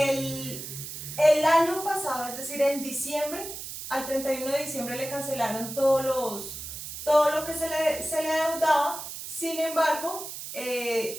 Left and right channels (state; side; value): noise; right; hiss, 9 dB below the sound